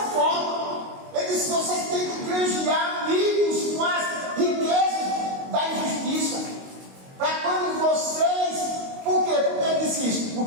Ele diz: vocês têm que granjear amigos com as riquezas da injustiça. Para quando vocês. Por quê? Por que ele disse isso?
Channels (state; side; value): late; left; 22 ms